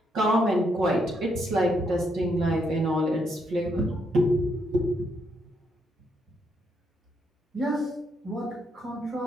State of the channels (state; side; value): normal; both; correlation 0.76